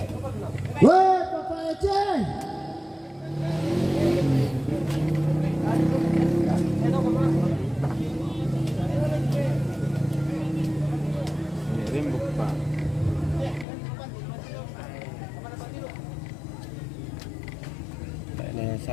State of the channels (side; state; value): right; drops out; at 13.7 s